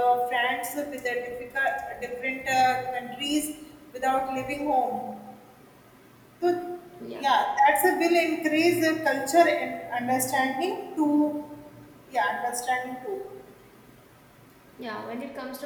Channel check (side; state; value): both; identical; correlation 1.00